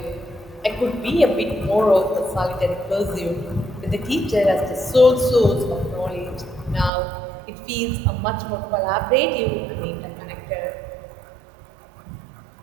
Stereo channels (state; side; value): drops out; left; at 6.9 s